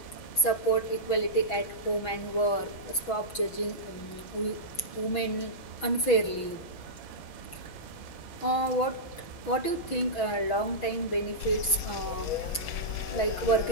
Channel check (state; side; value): late; right; 6.2 ms